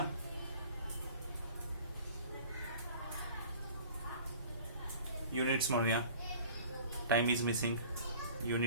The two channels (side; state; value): both; inverted; correlation -0.46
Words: युनिट्स म्हणूया, टाइम इज मिसिंग,